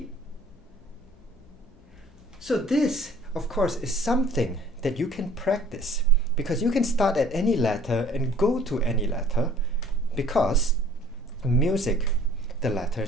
So this, of course, is something that you can practice, because you can start at any letter and go to any letter, because music, the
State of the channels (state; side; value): noise; left; hum, 27 dB below the sound